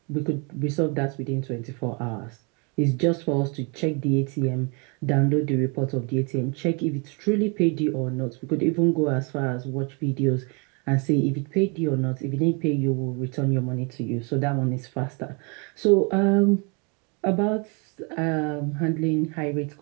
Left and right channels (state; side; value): quieter; left; 32.9 dB